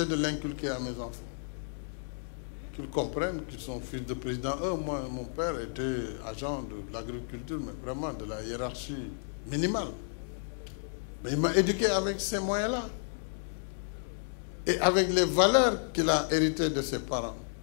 de l'inculquer à mes enfants. Qu'ils comprennent qu'ils sont fils de président. Moi, mon père était agent de l'agriculture, mais vraiment de la hiérarchie minimale. Mais il m'a éduqué avec ces moyens-là. Et avec les valeurs qu'il a héritées de ses parents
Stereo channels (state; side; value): silent; right; digital silence